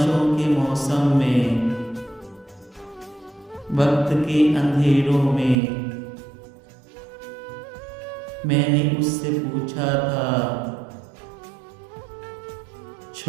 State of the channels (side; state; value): left; drops out; at 5.6 s